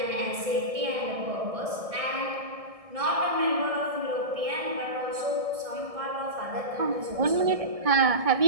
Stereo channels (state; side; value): late; left; 1.6 ms